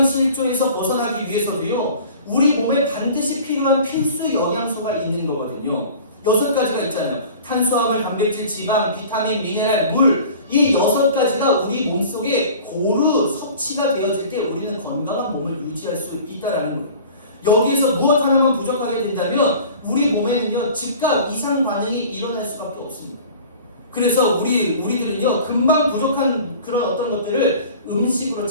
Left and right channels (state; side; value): inverted; both; correlation -0.43